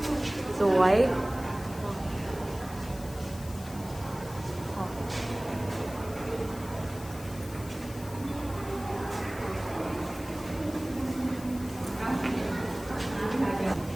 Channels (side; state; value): left; noise; hiss, 17 dB below the sound